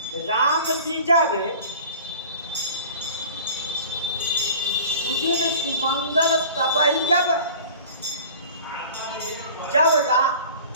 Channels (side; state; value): both; inverted; correlation -0.42